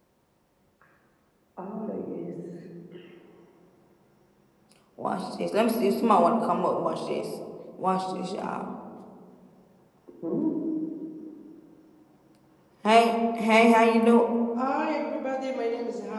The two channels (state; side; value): identical; both; correlation 1.00